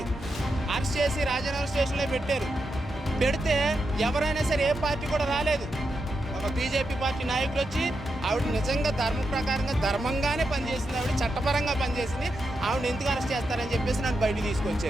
అరెస్ట్ చేసి రాజనగర్ స్టేషన్లో పెట్టారు. పెడితే ఎవరైనా సరే ఏ పార్టీ కూడా రాలేదు. ఒక బీజేపీ పార్టీ నాయకులు వచ్చి ఆవిడ నిజంగా ధర్మ ప్రకారంగా ధర్మంగానే పనిచేసింది, ఆవిడ చట్టపరంగా పనిచేసింది, ఆవిడ ఎందుకు అరెస్ట్ చేస్తారని చెప్పేసి నన్ను బయటకు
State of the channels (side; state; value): both; normal; correlation 0.86